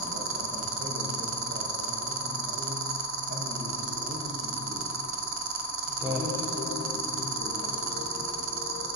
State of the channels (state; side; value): normal; both; correlation 0.10